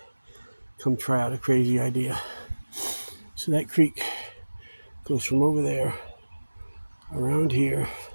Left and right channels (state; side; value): inverted; both; correlation -1.00